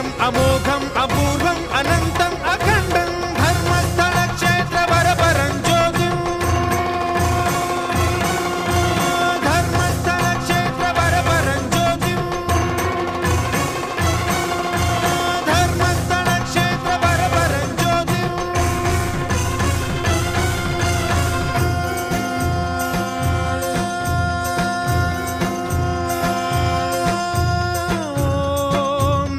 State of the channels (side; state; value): both; identical; correlation 1.00